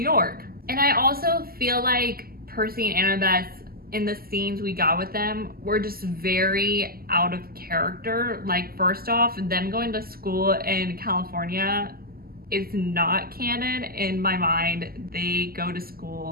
And I also feel like Percy and Annabeth, in the scenes we got with them, were just very out of character. Like, first off, them going to school in California is not canon in my mind. They go to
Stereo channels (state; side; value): late; left; 0.43 ms